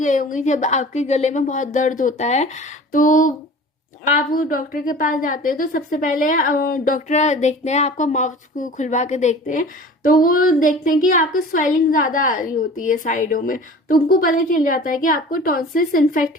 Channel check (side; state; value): both; normal; correlation 0.42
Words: होंगे, जब आपके गले में बहुत दर्द होता है तो आप डॉक्टर के पास जाते हैं तो सबसे पहले डॉक्टर देखते हैं, आपका माउथ को खुलवा के देखते हैं तो वो देखते हैं कि आपको स्वेलिंग ज्यादा आ रही होती है साइडों में, तो उनको पता चल जाता है कि आपको टॉन्सिल्स इन्फेक्ट